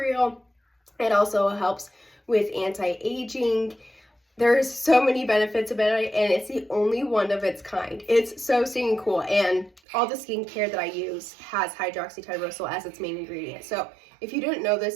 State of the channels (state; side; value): drops out; left; at 9.8 s